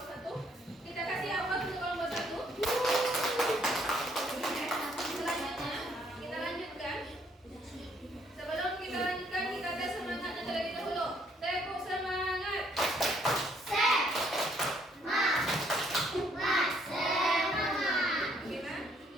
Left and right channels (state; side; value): normal; both; correlation 0.67